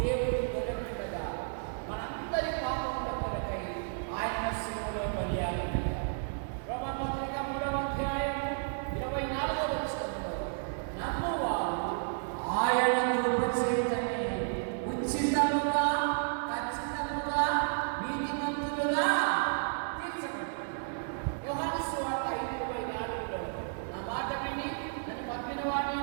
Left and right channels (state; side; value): silent; left; 56 dB below the other